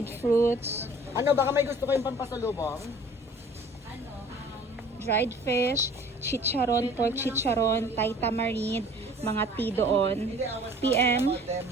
fruits, Ano, baka may gusto kayong pampasalubong? dried fish, chicharon, pork chicharon, Thai tamarind, mga tea doon. PM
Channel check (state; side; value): normal; both; correlation 0.50